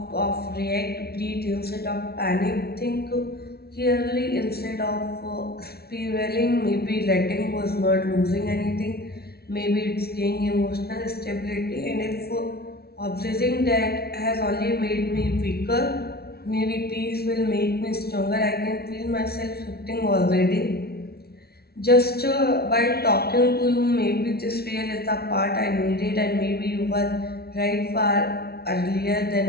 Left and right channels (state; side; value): late; right; 0.45 ms